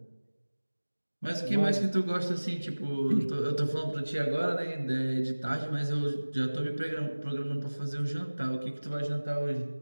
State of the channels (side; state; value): both; inverted; correlation -1.00